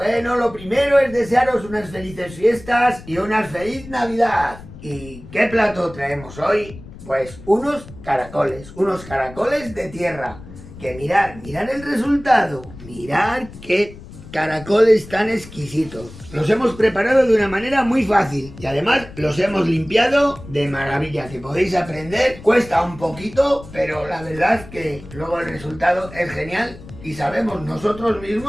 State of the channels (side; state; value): left; noise; rumble, 17 dB below the sound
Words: Bueno, lo primero es desearos unas felices fiestas y una feliz Navidad. ¿Y qué plato traemos hoy? Pues unos caracoles de tierra. Que mirad el resultado. Mirad qué caracoles tan exquisitos. Los hemos preparado de una manera muy fácil y además los hemos limpiado de maravilla, que podéis aprender. Cuesta un poquito, pero la verdad que luego el resultado es genial. Y sabemos nosotros